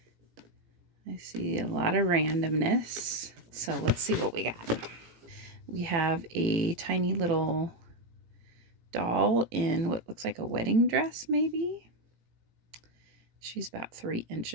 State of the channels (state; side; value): late; left; 18 ms